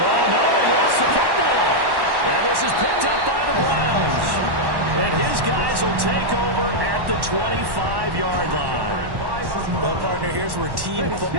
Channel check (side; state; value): left; late; 1.1 ms